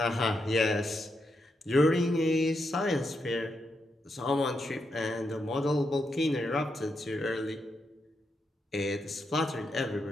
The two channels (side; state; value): both; normal; correlation 0.83